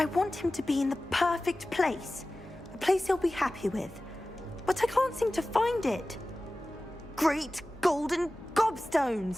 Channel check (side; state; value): both; normal; correlation 0.96